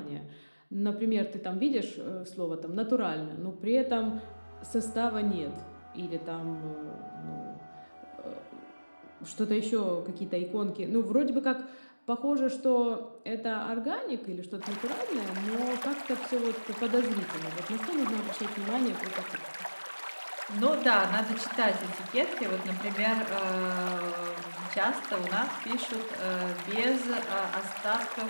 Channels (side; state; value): both; inverted; correlation -1.00